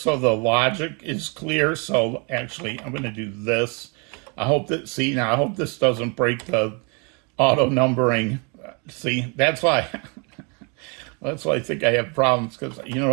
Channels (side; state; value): left; quieter; 33.5 dB